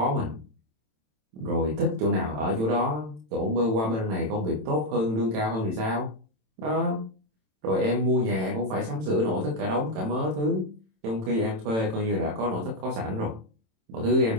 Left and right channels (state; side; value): late; left; 27 ms